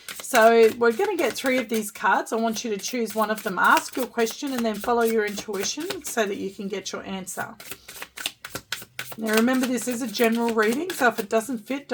So we're going to get 3 of these cards. I want you to choose one of them. Ask your question and then follow your intuition so that you can get your answer. Now remember, this is a general reading, so if it doesn't fit,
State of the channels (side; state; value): both; identical; correlation 1.00